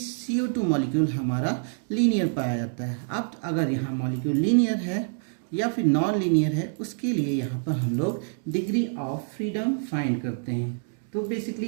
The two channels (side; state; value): left; silent; digital silence